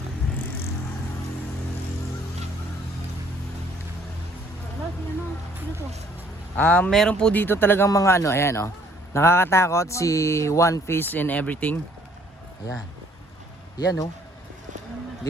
Meron po dito talagang mga ano, ayan oh. Nakakatakot si One Piece and everything. Ayan. Ayan oh. 'Di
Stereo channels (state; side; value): normal; both; correlation 0.61